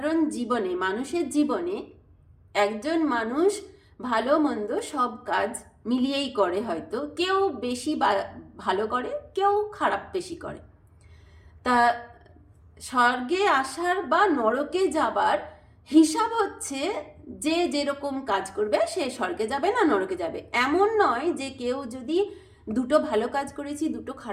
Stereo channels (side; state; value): both; identical; correlation 1.00